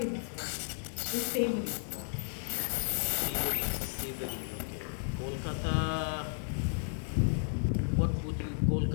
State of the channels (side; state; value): right; silent; digital silence